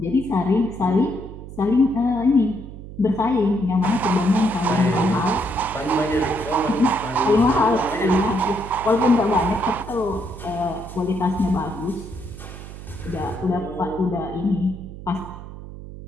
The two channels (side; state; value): right; noise; hum, 13 dB below the sound